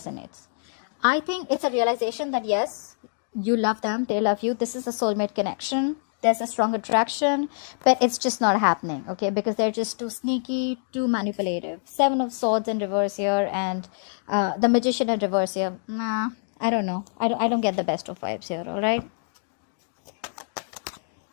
I think it's a realization that yes, you love them, they love you. This is a soulmate connection. There's a strong attraction, but it's just not happening. Okay, because they're just too sneaky, too manipulative. Seven of Swords in reverse here, and the Magician in reverse here. Nah, I don't know. I don't get the best of vibes here. All right.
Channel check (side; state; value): right; silent; digital silence